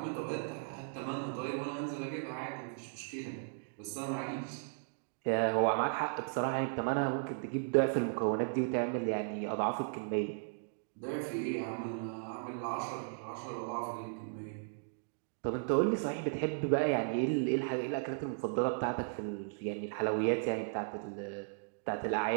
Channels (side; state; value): left; silent; digital silence